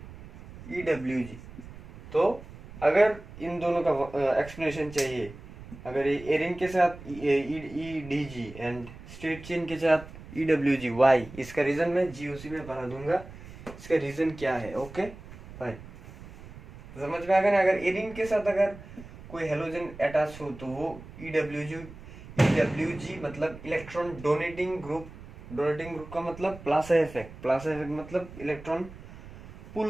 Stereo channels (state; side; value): noise; right; rumble, 16 dB below the sound